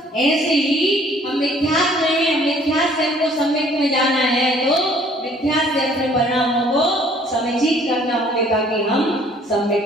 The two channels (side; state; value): both; normal; correlation 0.57